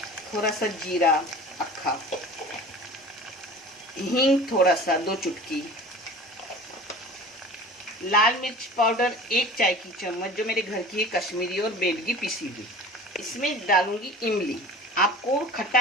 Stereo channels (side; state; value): both; normal; correlation 0.40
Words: थोड़ा सा जीरा अक्खा, हींग थोड़ा सा 2 चुटकी, लाल मिर्च पाउडर 1 चाय की चम्मच, जो मेरे घर की है, कश्मीरी और बेडगी पिसी हुई। इसमें डालूंगी इमली। आपको